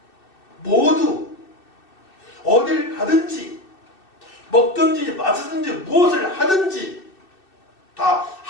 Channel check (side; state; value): right; late; 2.6 ms